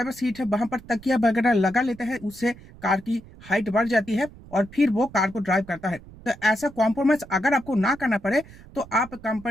सीट है वहां पर तकिया वगैरह लगा लेते हैं, उससे कार की हाइट बढ़ जाती है और फिर वो कार को ड्राइव करता है। तो ऐसा कॉम्प्रोमाइज अगर आपको ना करना पड़े तो आप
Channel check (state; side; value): noise; right; rumble, 20 dB below the sound